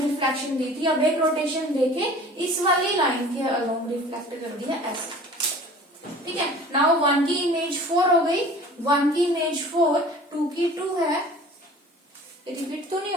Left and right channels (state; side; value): normal; both; correlation 0.45